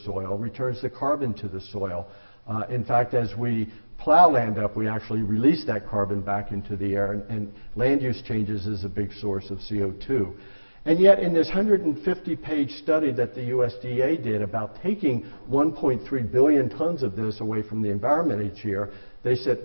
returns the carbon to the soil. In fact, as we plow land up, we actually release that carbon back into the air, and land use changes is a big source of CO2. And yet in this 150-page study that the USDA did about taking 1.3 billion tons of this away from the environment each year, they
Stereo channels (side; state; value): both; inverted; correlation -1.00